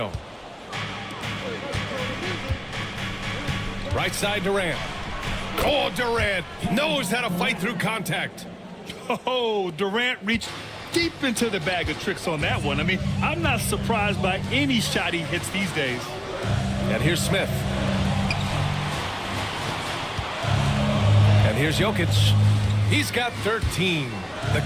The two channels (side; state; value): both; identical; correlation 1.00